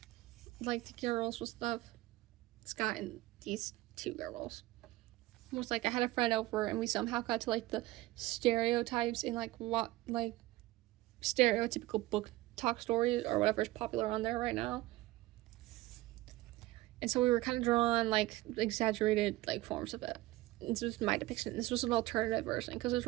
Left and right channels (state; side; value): quieter; left; 18.0 dB